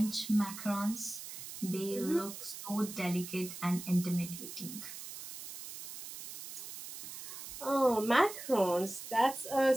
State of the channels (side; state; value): right; noise; hiss, 11 dB below the sound